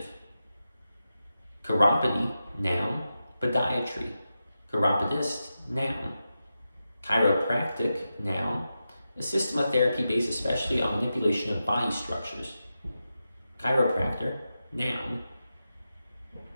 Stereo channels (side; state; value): both; inverted; correlation -0.90